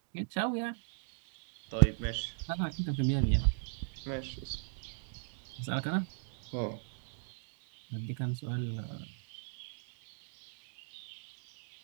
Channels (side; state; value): left; silent; digital silence